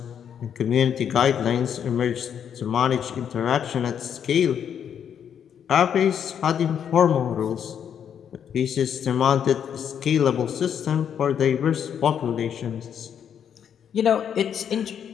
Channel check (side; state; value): right; quieter; 8.5 dB